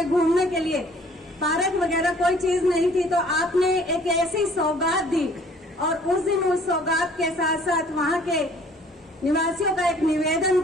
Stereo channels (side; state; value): both; normal; correlation 0.55